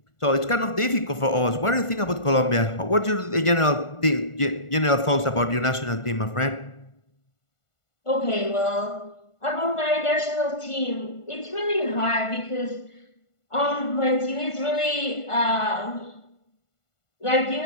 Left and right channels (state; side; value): late; right; 1.5 ms